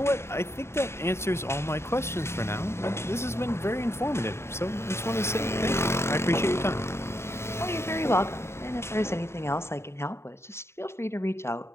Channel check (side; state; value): right; late; 0.13 ms